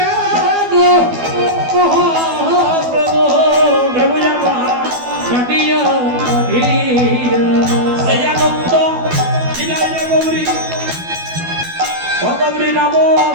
গো মহাপ্রভু প্রভু আমার কাটিয়া কাটিয়া সেই আনন্দ দিলাই রে গৌরী, ও গৌরী নাম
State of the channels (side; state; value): left; late; 12 ms